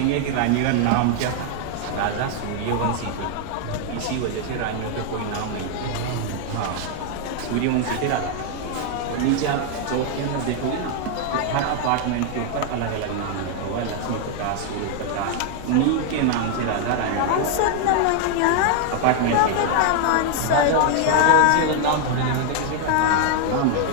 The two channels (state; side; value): different; both; correlation 0.00